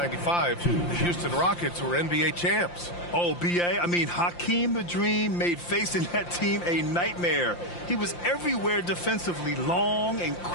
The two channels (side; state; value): right; late; 5.8 ms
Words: the Houston Rockets were NBA champs. Oh, B.A., I mean, Hakeem the Dream made facing that team a nightmare. He was everywhere defensively, long and